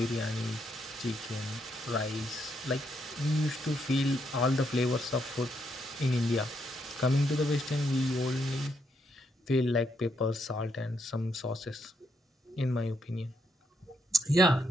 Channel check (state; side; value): normal; both; correlation 0.77